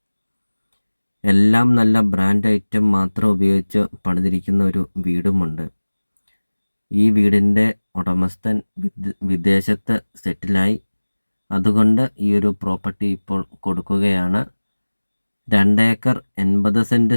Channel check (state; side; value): inverted; both; correlation -1.00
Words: എല്ലാം നല്ല ബ്രാൻഡ് ഐറ്റം മാത്രം ഉപയോഗിച്ച് പണിതിരിക്കുന്ന ഒരു വീടുമുണ്ട്. ഈ വീടിൻ്റെ ഉടമസ്ഥൻ വിദേശത്ത് സെറ്റിലായി. അതുകൊണ്ട് ഈ ഒരു പ്രോപ്പർട്ടി ഇപ്പോൾ കൊടുക്കുകയാണ്. 2 ഏക്കർ 80 സെൻറ്റ്